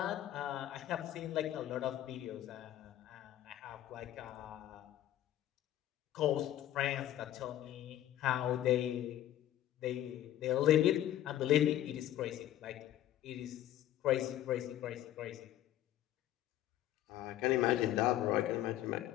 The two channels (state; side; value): quieter; right; 12.7 dB